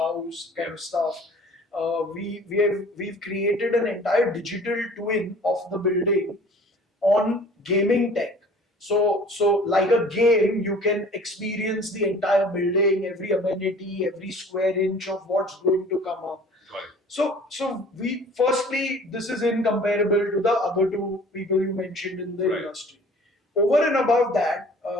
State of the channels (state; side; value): normal; both; correlation 0.48